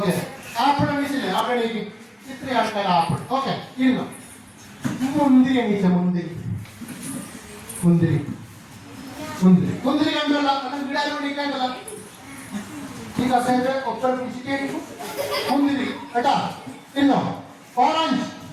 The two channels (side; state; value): both; identical; correlation 1.00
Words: apple എണീച്ചില്ലേ? ആപ്പിൾ എണീക്കും. ഇത്രയും ആൾക്കാർ ആപ്പിൾ. ഓക്കെ, ഇരുന്നോ. മുന്തിരി എണീച്ച മുന്തിരി മുന്തിരി മുന്തിരി മുന്തിരി കണ്ടല്ല. വീടാരും എണീക്കേണ്ടല്ല. ഈ കസേര ഒപ്പം പിടിച്ചിട്ട് മുന്തിരി കേട്ടാ. ഇരുന്നോ. ഓറഞ്ച്.